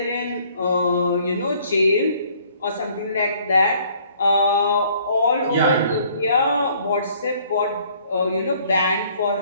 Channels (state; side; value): inverted; both; correlation -0.60